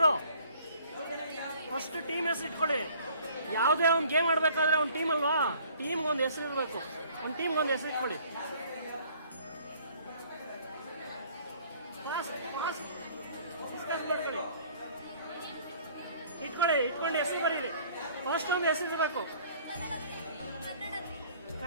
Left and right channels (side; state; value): both; inverted; correlation -0.55